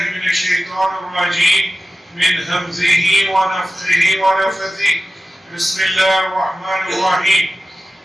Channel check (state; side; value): normal; both; correlation 0.95